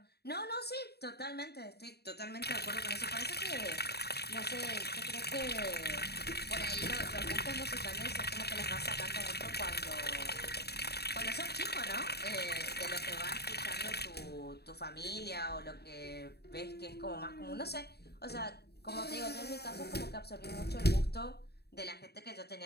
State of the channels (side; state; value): right; late; 0.47 ms